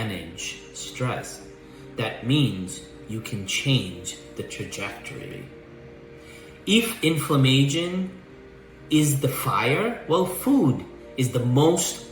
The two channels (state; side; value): identical; both; correlation 1.00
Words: stress. That means you can change the trajectory. If inflammation is the fire, well, food is the